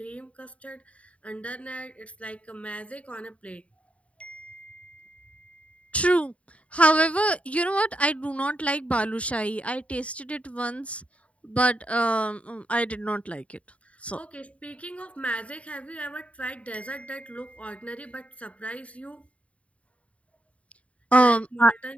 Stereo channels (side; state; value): right; late; 0.064 ms